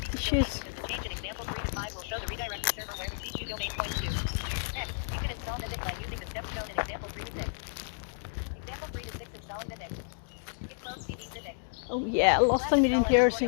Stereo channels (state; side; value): silent; right; digital silence